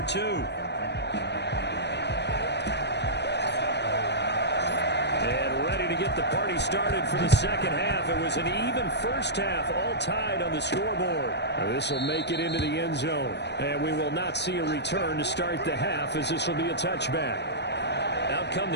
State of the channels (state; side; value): late; right; 0.50 ms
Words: 2. To get the party started for the second half. It was an even first half, all tied on the scoreboard. This will make it into the end zone, and we will not see a return to start the half as this will be a touchback. Out come